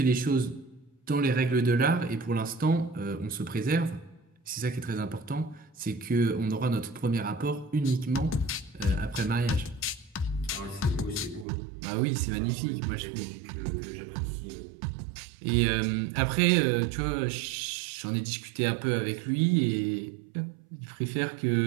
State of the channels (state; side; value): drops out; left; at 11.5 s